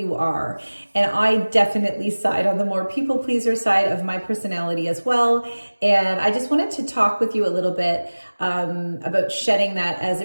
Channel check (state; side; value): inverted; both; correlation -1.00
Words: are. And I definitely side on the more people pleaser side of my personality as well. And I just wanted to talk with you a little bit about shedding that, as